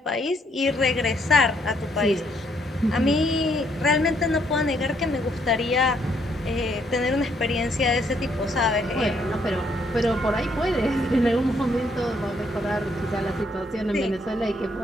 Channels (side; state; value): both; normal; correlation 0.70